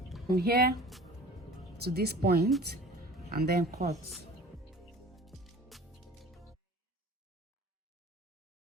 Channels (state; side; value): normal; both; correlation 0.44